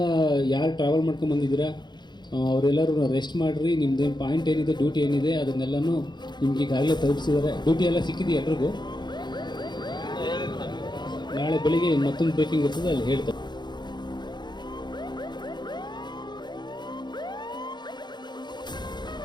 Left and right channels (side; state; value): right; late; 0.21 ms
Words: ಯಾರು ಟ್ರಾವೆಲ್ ಮಾಡ್ಕೊಂಡು ಬಂದಿದ್ದೀರಾ ಅವರೆಲ್ಲರೂ ರೆಸ್ಟ್ ಮಾಡಿರಿ. ನಿಮ್ಮದೇನು ಪಾಯಿಂಟ್ ಏನಿದೆ, ಡ್ಯೂಟಿ ಏನಿದೆ ಅದನ್ನೆಲ್ಲನೂ ನಿಮ್ಗೆ ಈಗಾಗಲೇ ತಲುಪಿಸಿದ್ದಾರೆ. ಡ್ಯೂಟಿ ಎಲ್ಲ ಸಿಕ್ಕಿದೆ ಎಲ್ರಿಗೂ. ನಾಳೆ ಬೆಳಿಗ್ಗೆ ಮತ್ತೊಂದು ಬ್ರೀಫಿಂಗ್ ಇರ್ತದೆ, ಅಲ್ಲಿ ಹೇಳ್ತಾರೆ.